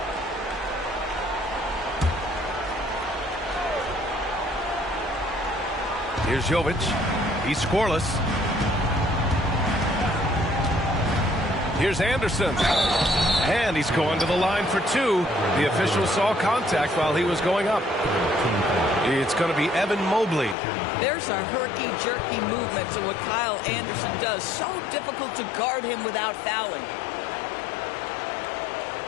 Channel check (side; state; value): right; drops out; at 20.6 s